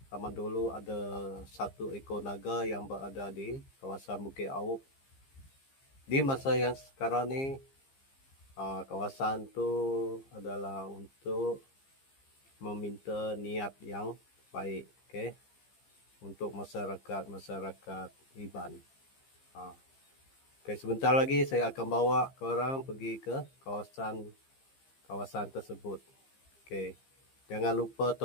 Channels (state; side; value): late; right; 15 ms